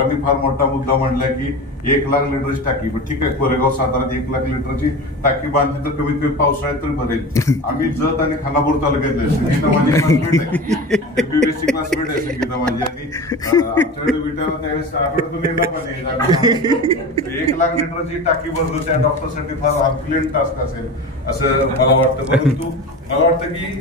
फार मोठा मुद्दा मांडला की 1 लाख लिटरची टाकी. पण ठीक आहे, कोरेगाव साताऱ्यात 1 लाख लिटरची टाकी बांधली तर कमीत कमी पावसाळ्यात तरी भरेल. आम्ही जत आणि खानापूर तालुक्यातले, संगीता माझी क्लासमेट आहे, MBBSची क्लासमेट आहे संगीता माझी. आणि आमच्याकडे विटायला त्यावेळेस आठवड्यातून येणार पण 1 लाख लिटरची टाकी भरतो त्या डॉक्टरसाठी फार हरक्युलेंट टास्क असेल असं मला वाटतं. परंतु मला वाटतं की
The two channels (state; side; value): normal; both; correlation 0.30